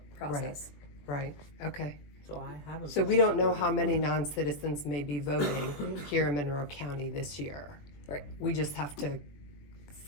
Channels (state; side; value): late; right; 21 ms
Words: process. Right, okay. So I have a. So we don't know how many non-citizens may be voting here in Monroe County this year. Right. We just have to